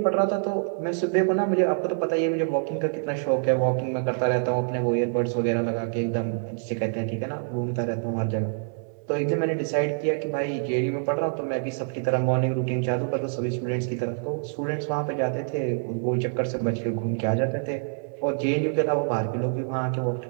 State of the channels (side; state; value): left; silent; 61 dB below the other